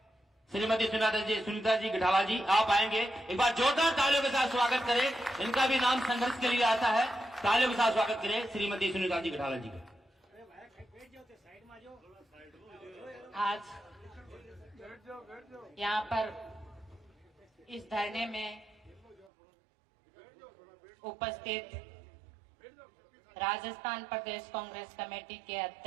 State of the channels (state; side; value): drops out; left; at 19.3 s